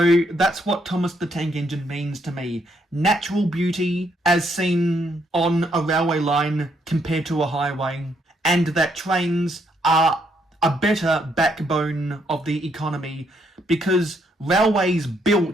that's what Thomas the Tank Engine means to me. Natural beauty as seen on a railway line compared to a highway, and that trains are a better backbone of the economy because railways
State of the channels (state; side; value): normal; both; correlation 0.73